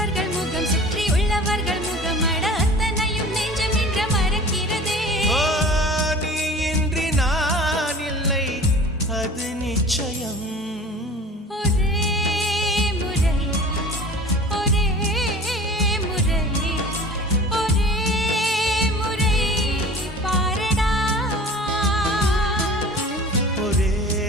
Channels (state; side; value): normal; both; correlation 0.42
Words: முகம் சுற்றி உள்ளவர்கள் முகம் அட அத்தனையும் நெஞ்சம் நின்ற மறக்கிறதே. ஓ, நீ இன்றி நான் இல்லை அது நிச்சயம். ஒரே முறை ஒரே முறை ஒரே முறை பாரடா. ஒரே